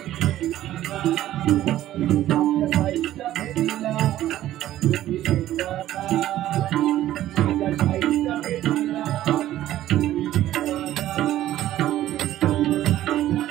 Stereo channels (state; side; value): quieter; left; 13.6 dB